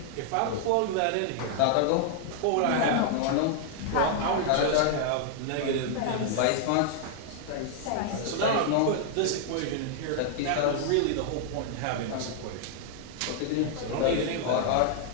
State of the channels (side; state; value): both; different; correlation 0.00